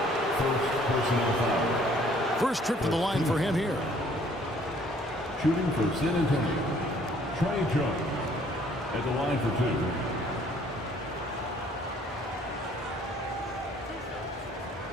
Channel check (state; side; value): normal; both; correlation 0.60